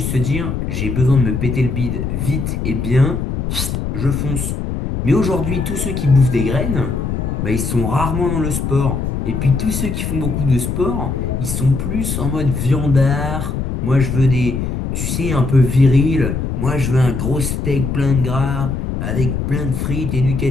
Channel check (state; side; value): noise; left; rumble, 2 dB below the sound